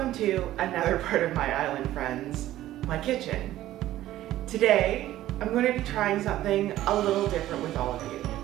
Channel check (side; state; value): left; quieter; 14.2 dB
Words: to another part of my island, friends, my kitchen. Today, I'm going to be trying something a little different with all of you.